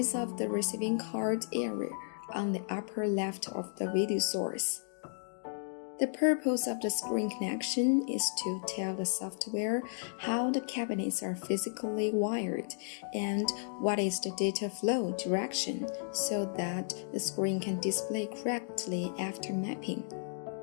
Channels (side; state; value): right; silent; digital silence